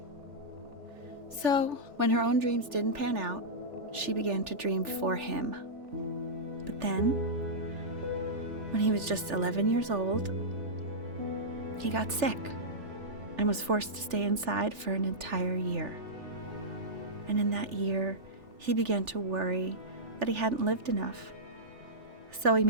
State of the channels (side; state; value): left; late; 3.4 ms